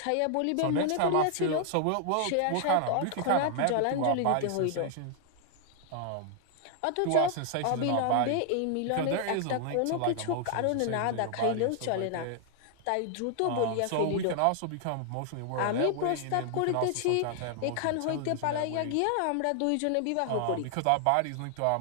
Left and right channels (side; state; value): both; different; correlation 0.00